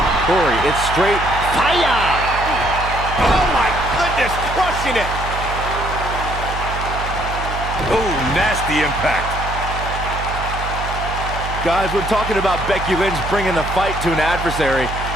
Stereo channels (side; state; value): right; noise; hum, 6 dB below the sound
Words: Corey, it's straight fire! Oh my goodness, crushing it! Oh, nasty impact. Guys, when talking about Becky Lynch bringing the fight to an adversary,